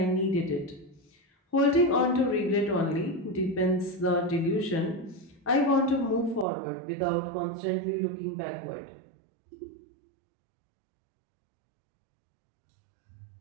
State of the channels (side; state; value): left; drops out; at 6.5 s